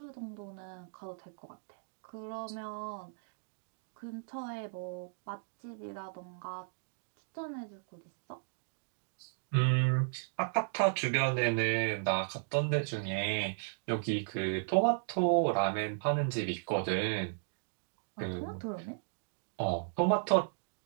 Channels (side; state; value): left; silent; digital silence